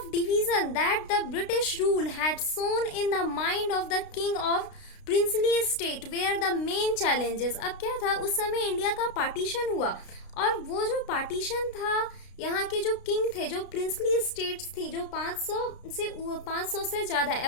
division that the British rule had sown in the mind of the king of princely state were the main challenges. अब क्या था, उस समय इंडिया का पार्टीशन हुआ, और वो जो पार्टीशन था, यहाँ के जो किंग थे, जो प्रिंसली स्टेट्स थी, जो 500 से ज्यादा,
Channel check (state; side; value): late; right; 32 ms